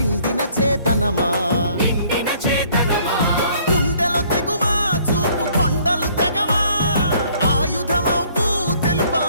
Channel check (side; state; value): both; inverted; correlation -0.60